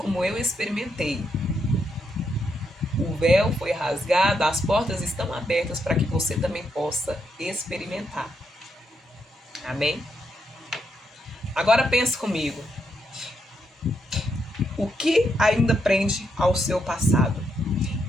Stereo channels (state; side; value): normal; both; correlation 0.80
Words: eu experimentei, o véu foi rasgado, as portas estão abertas para que você também possa experimentar. Amém? Agora pense comigo. O que ainda prende ao seu passado?